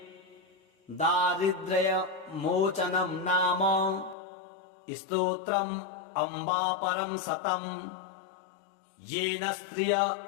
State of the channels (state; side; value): drops out; right; at 4.2 s